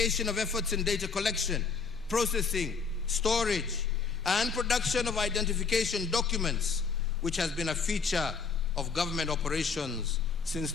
of efforts in data collection, processing, storage, and production of identification documents, which has been a feature of government operations since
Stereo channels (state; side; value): quieter; right; 5.3 dB